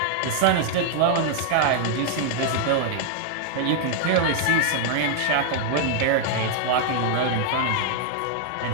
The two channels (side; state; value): both; different; correlation 0.00